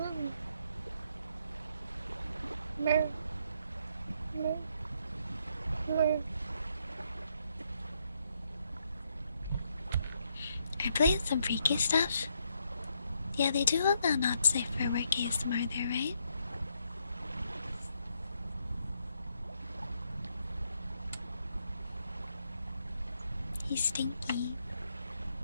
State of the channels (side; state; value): both; inverted; correlation -0.75